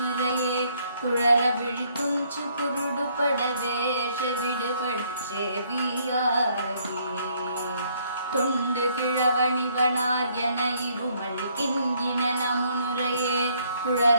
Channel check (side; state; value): both; inverted; correlation -0.67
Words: குழற விழித்துஞ்சு குருடுபட வேஷ விடுபட செவியாகி தொண்டு கிழவணிவனார் என இருமல் கிண்கின முன்னுரையே